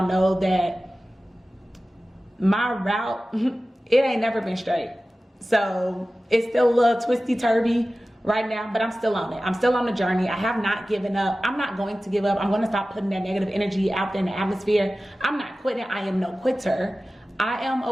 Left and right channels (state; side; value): normal; both; correlation 0.96